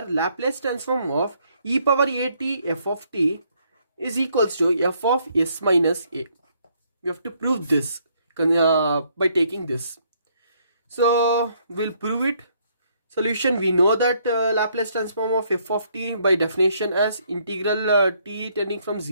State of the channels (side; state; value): both; inverted; correlation -0.69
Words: Laplace transform of e power at f of t is equals to f of s minus a. We have to prove this by taking this. So we'll prove it. Solution: we know that Laplace transform of f of t by definition as integral t tending from